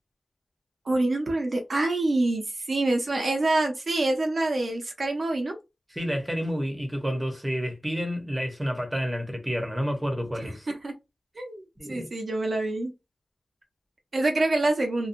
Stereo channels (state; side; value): normal; both; correlation 0.96